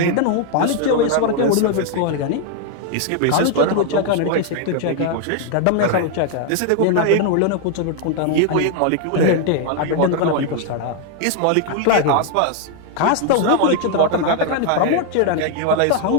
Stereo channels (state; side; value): different; both; correlation 0.00